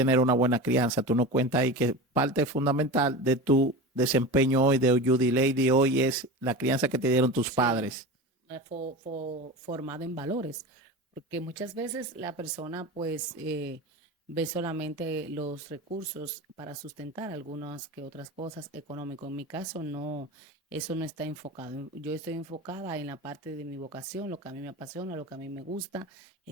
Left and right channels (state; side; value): normal; both; correlation 0.29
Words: una buena crianza. Tú nos cuentas ahí que parte fundamental de tu desempeño hoy de Judy Lady hoy es la crianza que te dieron tus Sí, padres. formado en valores, porque muchas veces la persona pues ve solamente los recursos para sustentar algunas que otras cosas económicas. En mi caso no, eso no está enfocado. Yo estoy enfocada en la parte de mi vocación, lo que a mí me apasiona, lo que a mí me gusta,